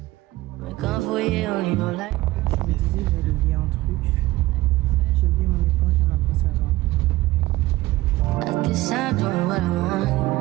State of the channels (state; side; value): quieter; left; 18.1 dB